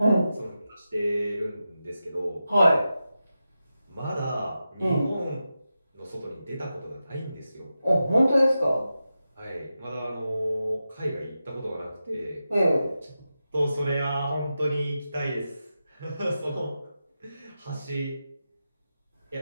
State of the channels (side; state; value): both; inverted; correlation -0.91